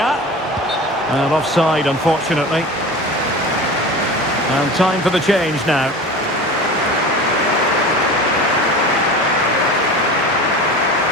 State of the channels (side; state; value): both; normal; correlation 0.34